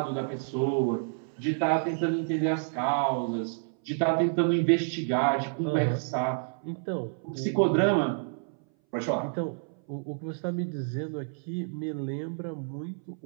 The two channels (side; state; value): left; silent; 58 dB below the other